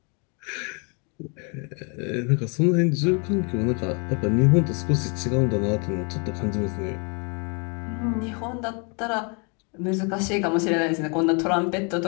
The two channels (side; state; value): right; quieter; 35.1 dB